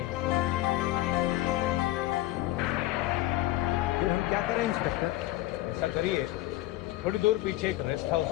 फिर हम क्या करें इंस्पेक्टर? ऐसा करिए, थोड़ी दूर पीछे एक रेस्ट हाउस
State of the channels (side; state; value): right; quieter; 16.4 dB